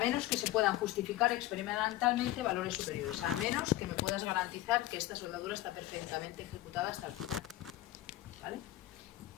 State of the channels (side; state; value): right; quieter; 15.7 dB